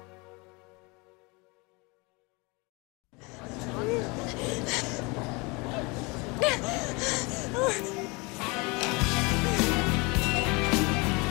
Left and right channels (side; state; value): right; quieter; 27.4 dB